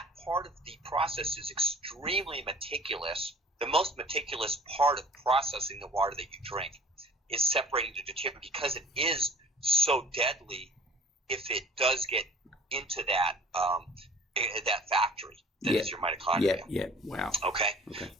part of the process is extremely meticulous. The most meticulous part of processing the water that you drink is separating the deuterium because it is so deadly if it does get into that factory that is your mitochondria. Yeah. Wow. Okay.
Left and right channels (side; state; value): both; normal; correlation 0.48